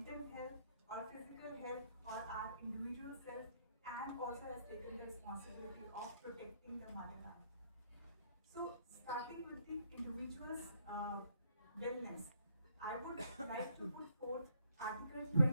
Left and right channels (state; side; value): inverted; both; correlation -0.69